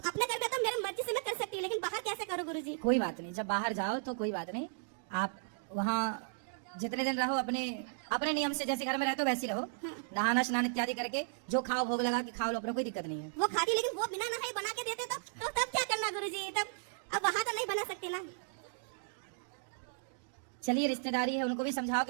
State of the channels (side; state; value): left; silent; digital silence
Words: अपने घर में तो मेरी मर्जी से मैं कर सकती हूँ, लेकिन बाहर कैसे करूँ गुरुजी? कोई बात नहीं, जब बाहर जाओ तो कोई बात नहीं, आप वहाँ जितने दिन रहो अपने अपने नियम से, जैसे घर में रहते हो वैसे ही रहो, नहाना स्नान इत्यादि करके जो खाओ भोग लगा के खाओ लो, अपने कोई दिक्कत नहीं है। वो खाती, लेकिन वो बिना नहाए बना के देते तो तब क्या करना गुरुजी? तब अब वहाँ तो नहीं बना सकते ना। चलिए रिश्तेदारी है, उनको भी समझाओ